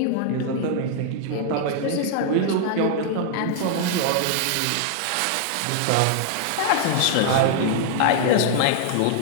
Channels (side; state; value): both; different; correlation 0.00